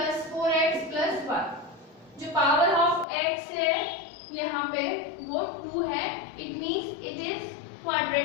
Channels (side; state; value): right; drops out; at 3.1 s